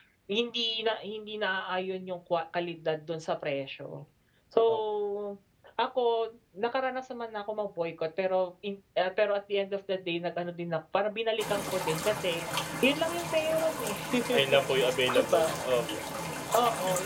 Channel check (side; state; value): both; identical; correlation 1.00